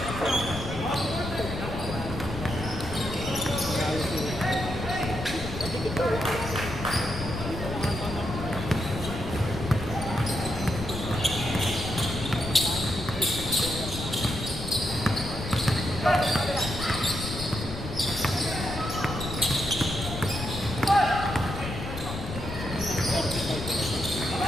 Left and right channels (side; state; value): left; noise; rumble, 7 dB below the sound